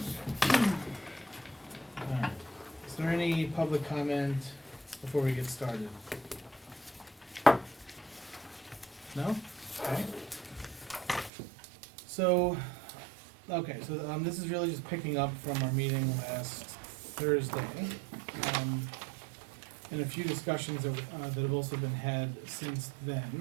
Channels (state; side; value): drops out; left; at 11.3 s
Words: Alright. Is there any public comment before we get started? No? Okay. So, this is really just picking up from our meeting last Thursday. And a few discussions that have also been had since